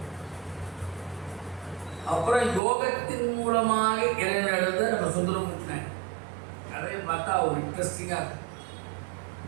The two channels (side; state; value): left; drops out; at 2.6 s